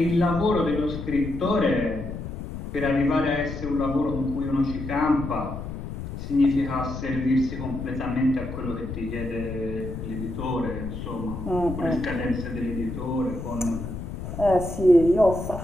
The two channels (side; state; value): left; noise; rumble, 7 dB below the sound